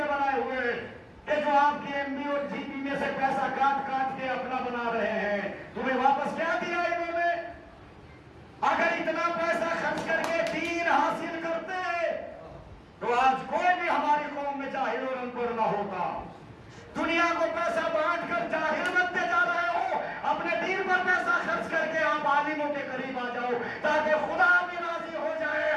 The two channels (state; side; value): identical; both; correlation 1.00